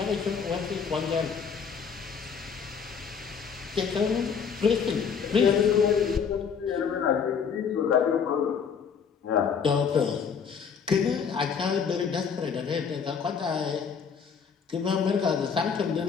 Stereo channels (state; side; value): quieter; right; 6.5 dB